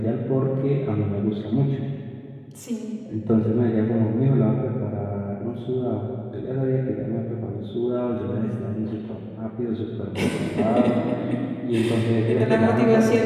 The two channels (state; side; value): identical; both; correlation 1.00